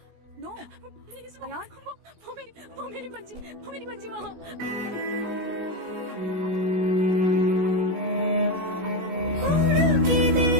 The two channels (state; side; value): late; left; 17 ms